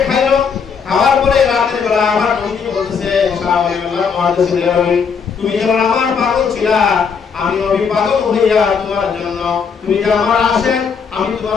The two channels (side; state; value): right; quieter; 6.1 dB